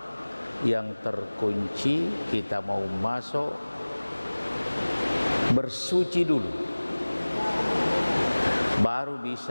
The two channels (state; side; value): inverted; both; correlation -1.00